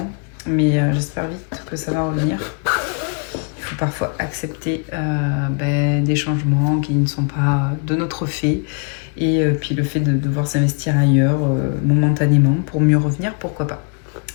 Mais j'espère vite que ça va revenir. Il faut parfois accepter des changements qui ne sont pas de notre fait. Et puis le fait de devoir s'investir ailleurs momentanément pour mieux revenir, pourquoi pas.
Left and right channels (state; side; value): quieter; right; 39.2 dB